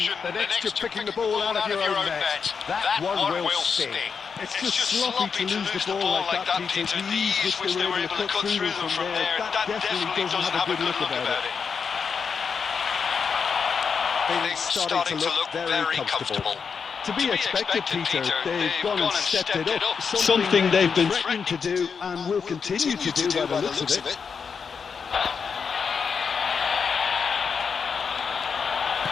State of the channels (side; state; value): right; quieter; 6.0 dB